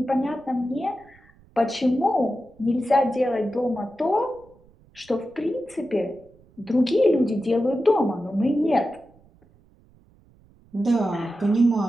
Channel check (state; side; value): noise; right; rumble, 29 dB below the sound